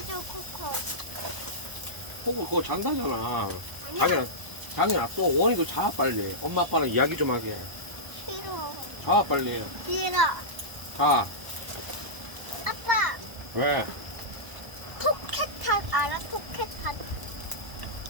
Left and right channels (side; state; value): left; late; 1.0 ms